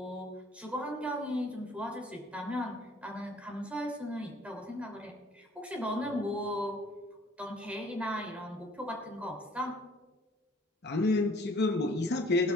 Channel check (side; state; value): both; normal; correlation 0.56